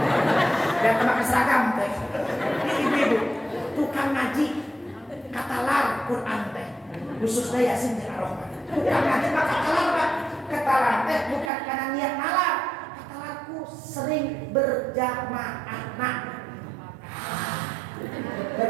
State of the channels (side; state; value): left; drops out; at 11.5 s